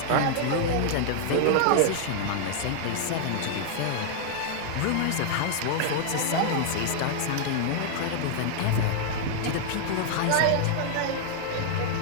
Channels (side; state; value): both; different; correlation -0.01